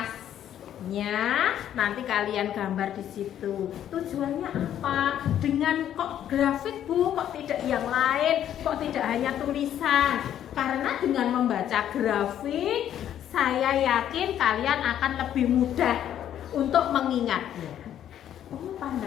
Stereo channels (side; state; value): right; quieter; 10.7 dB